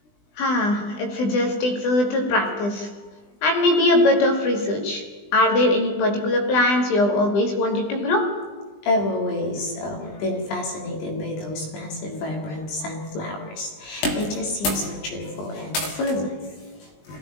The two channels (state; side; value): late; right; 20 ms